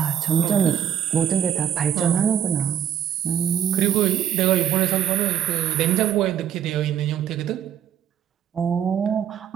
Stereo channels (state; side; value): quieter; left; 9.5 dB